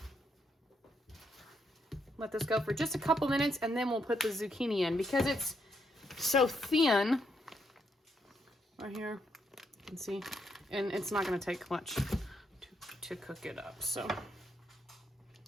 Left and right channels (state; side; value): normal; both; correlation 0.77